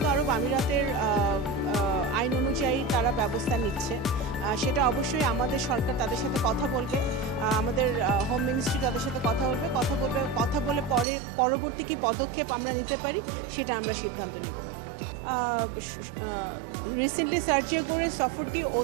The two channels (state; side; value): drops out; left; at 11.1 s